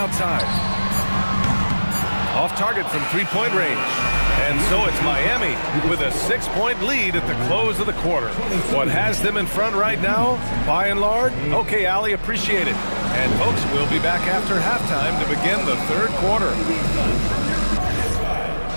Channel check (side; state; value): both; inverted; correlation -1.00